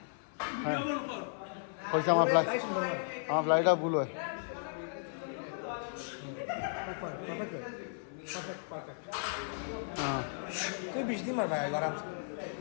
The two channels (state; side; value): silent; right; 54 dB below the other